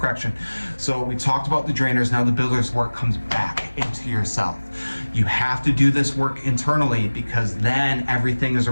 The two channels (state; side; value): inverted; both; correlation -1.00